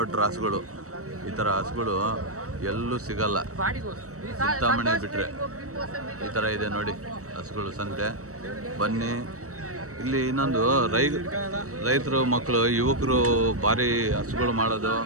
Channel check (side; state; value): left; late; 0.65 ms